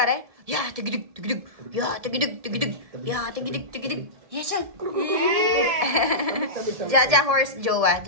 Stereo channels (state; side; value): late; left; 1.7 ms